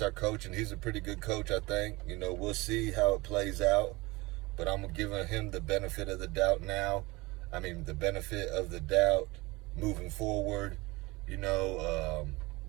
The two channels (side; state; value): left; quieter; 22.8 dB